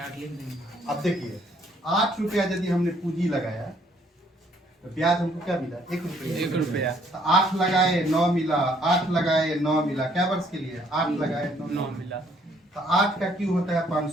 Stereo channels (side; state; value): both; normal; correlation 0.65